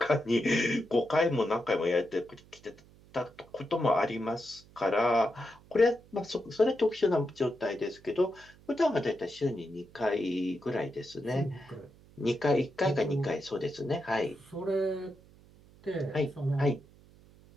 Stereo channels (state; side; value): noise; right; hum, 25 dB below the sound